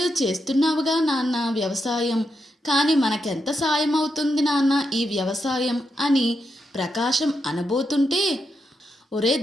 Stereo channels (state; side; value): normal; both; correlation 0.84